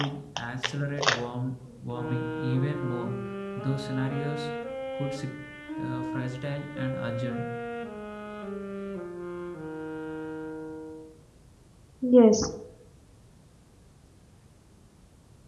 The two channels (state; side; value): identical; both; correlation 1.00